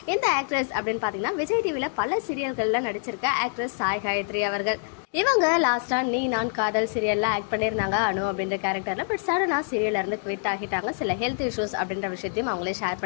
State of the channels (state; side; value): silent; right; digital silence